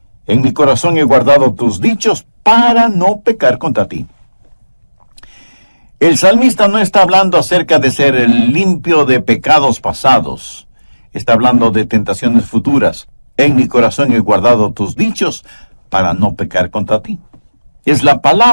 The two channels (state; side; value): inverted; both; correlation -1.00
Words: En mi corazón he guardado tus dichos para no pecar contra ti. El salmista no está hablando acerca de ser limpio de pecados pasados. Está hablando de tentaciones futuras. En mi corazón he guardado tus dichos para no pecar contra ti. Es la